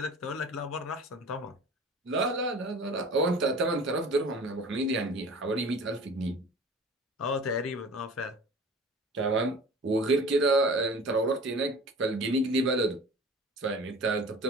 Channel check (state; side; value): normal; both; correlation 0.42